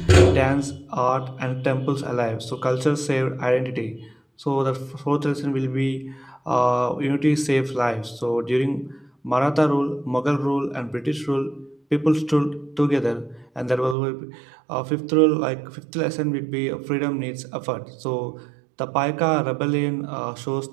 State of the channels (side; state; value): left; drops out; at 14.0 s